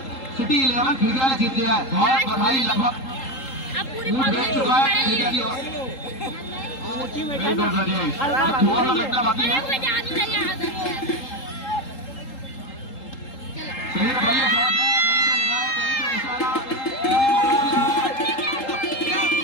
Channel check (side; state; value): right; late; 3.8 ms